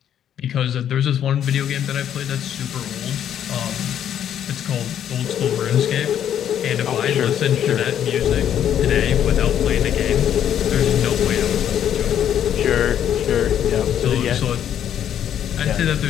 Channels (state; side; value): quieter; right; 9.9 dB